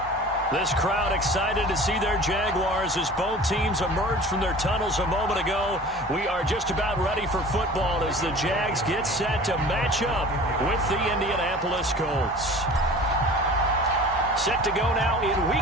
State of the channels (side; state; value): both; normal; correlation 0.42